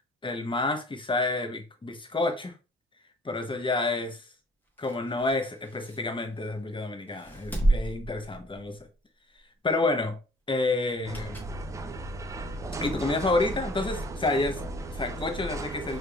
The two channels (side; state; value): both; normal; correlation 0.55